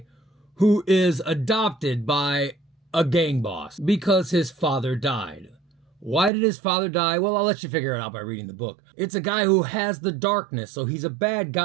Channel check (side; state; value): left; drops out; at 6.3 s